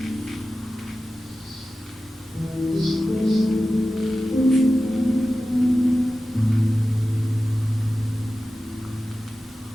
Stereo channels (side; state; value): both; normal; correlation 0.94